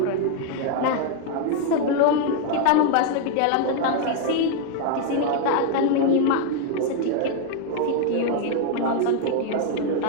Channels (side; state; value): both; different; correlation 0.00